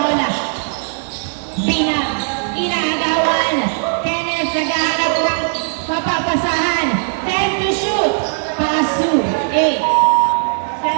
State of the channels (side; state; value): left; silent; 67 dB below the other